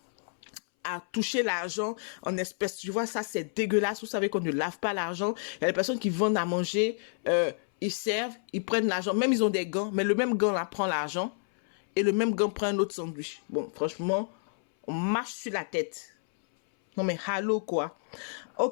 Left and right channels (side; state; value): right; silent; 58 dB below the other